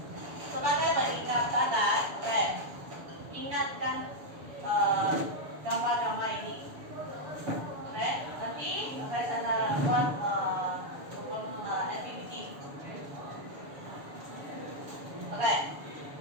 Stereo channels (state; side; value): late; left; 7.0 ms